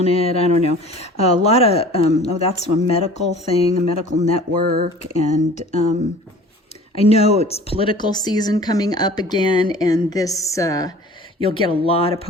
it. I don't know. A lot of, oh, that's a medical thing, a medical network. And I know it's political season coming up again, and this, you'll get a lot of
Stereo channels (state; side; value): normal; both; correlation 0.45